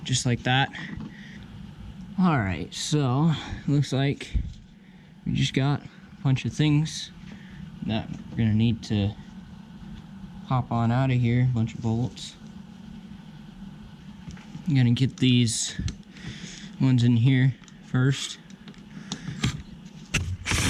just like that. All right, so looks like we just got a bunch of things that we're gonna need to hop on out of here. A bunch of bolts. I'm gonna get these ones in here first,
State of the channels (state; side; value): identical; both; correlation 1.00